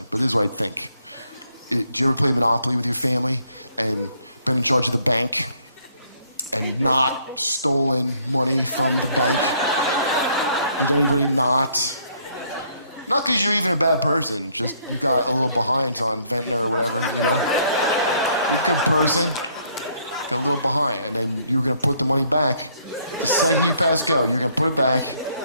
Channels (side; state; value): both; inverted; correlation -0.67